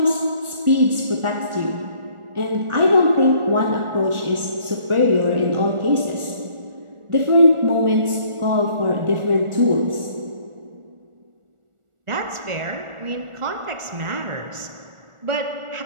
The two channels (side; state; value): left; late; 1.4 ms